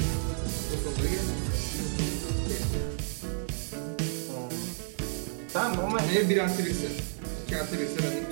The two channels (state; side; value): silent; left; digital silence